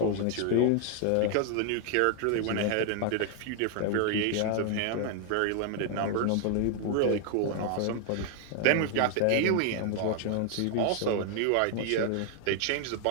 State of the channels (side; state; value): both; different; correlation 0.00